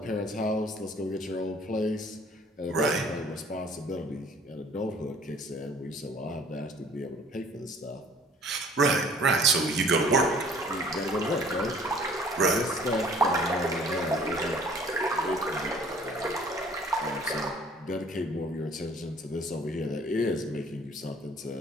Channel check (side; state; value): both; normal; correlation 0.54